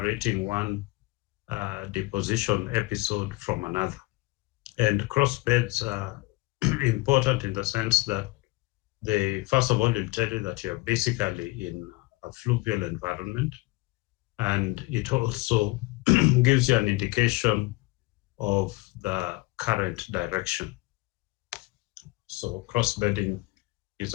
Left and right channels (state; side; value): quieter; right; 22.1 dB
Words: one deposition episode from another. And crossbeds are important in the sense that they, first of all, will tell you that you're basically in a fluvial environment, and it also gives you an indication of the current direction. So crossbedding is